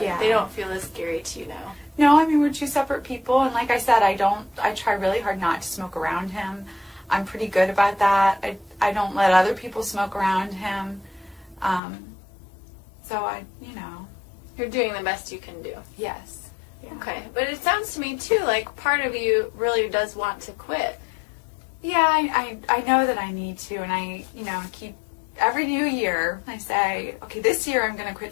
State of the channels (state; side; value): drops out; right; at 11.8 s